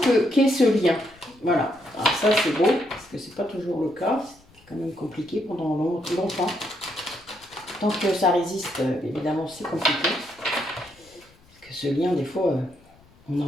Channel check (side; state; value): left; noise; rumble, 29 dB below the sound